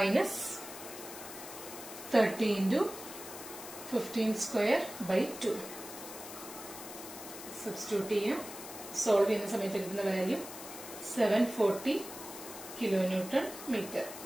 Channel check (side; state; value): left; noise; hiss, 12 dB below the sound